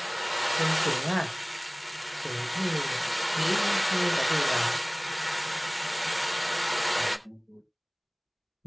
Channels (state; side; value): identical; both; correlation 1.00